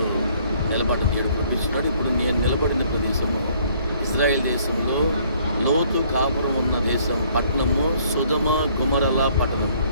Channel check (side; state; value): both; inverted; correlation -0.61